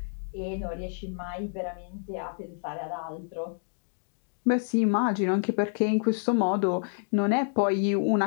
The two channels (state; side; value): silent; right; digital silence